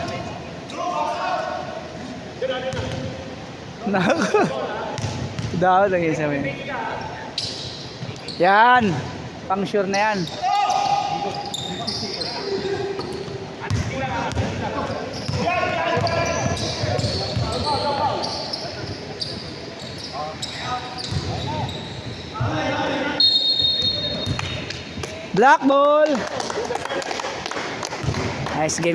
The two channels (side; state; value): both; identical; correlation 1.00